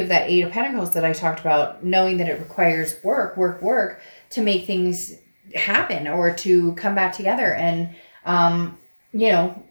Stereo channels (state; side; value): inverted; both; correlation -1.00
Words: that Aid of Pentacles that I talked about, knowing that it requires work to make things happen or to come back together and